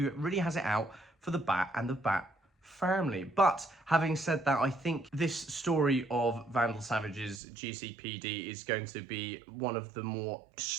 really has it out for the Bat and the Bat family. But having said that, I think this story of Vandal Savage's GCPD is going to be one of the more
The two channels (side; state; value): left; drops out; at 7.4 s